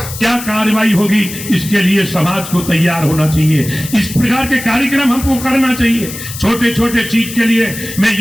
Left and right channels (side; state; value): left; noise; hiss, 11 dB below the sound